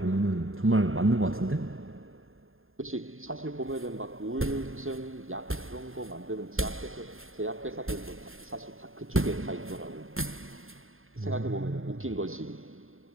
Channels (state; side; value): late; left; 0.60 ms